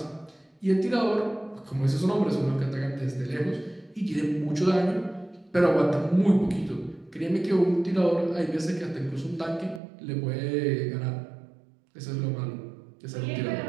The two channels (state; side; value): drops out; left; at 9.8 s